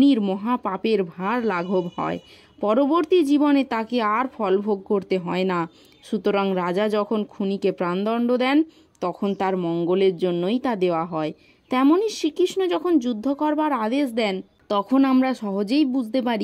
মহাপাপের ভার লাঘব হয়। পরবর্তী জীবনে তাকে আর ফলভোগ করতে হয় না। সুতরাং রাজা যখন খুনিকে প্রাণদণ্ড দেন, তখন তার মঙ্গলের জন্যই তা দেওয়া হয়। তেমনি শ্রীকৃষ্ণ যখন যুদ্ধ করবার আদেশ দেন, তখন আমরা সহজেই বুঝতে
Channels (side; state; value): both; identical; correlation 1.00